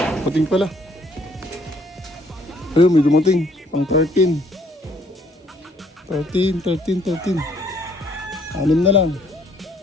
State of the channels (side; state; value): both; normal; correlation 0.64